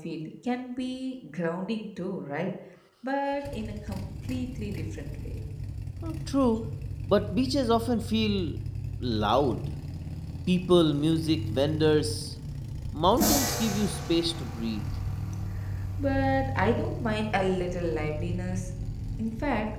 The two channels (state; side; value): identical; both; correlation 1.00